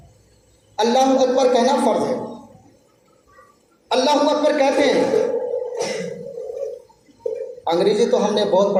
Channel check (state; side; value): identical; both; correlation 1.00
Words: اللہ اکبر کہنا فرض ہے. اللہ اکبر کہتے ہیں. انگریزی تو ہم نے بہت